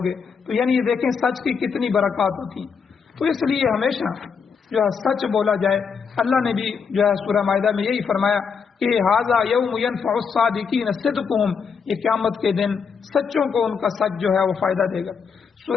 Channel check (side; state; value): right; quieter; 6.0 dB